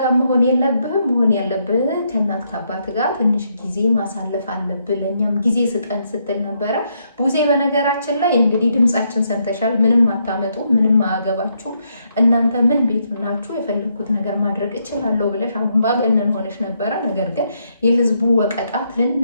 ጋር መሆን የለብህም። መሆን ያለብህ ከእናት ከአባት ጋር ትንሽ ጊዜ ማሳለፍ አለብህ፣ ለእኛም ጊዜ ስጠን ስትል ነበረ ቡዜ። በነገራችን ላይ እንግዲህ ድምጻችን ሰምተሻል። ምንም አታመጡ፣ ምንም አያገባችሁም እናንተ ምን ቤት ናችሁ፣ የፈለግኩት ነገር ማድረግ እችላለሁ ብለሽ አምባገነን ሆነሽ ነበረ። ነገር ግን የህዝቡ ወቀጣ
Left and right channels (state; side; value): inverted; both; correlation -0.77